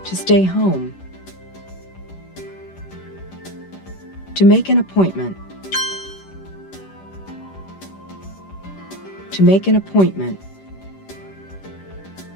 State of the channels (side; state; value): right; late; 11 ms